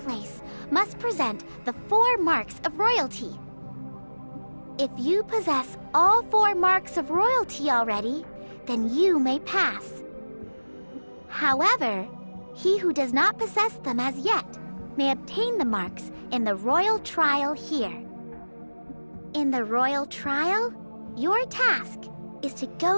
must present the 4 marks of royalty. If you possess all 4 marks of royalty already, then you may pass. However, he who does not possess them as yet may obtain the marks in the royal trial here. In the royal trial, your task is to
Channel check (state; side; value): inverted; both; correlation -1.00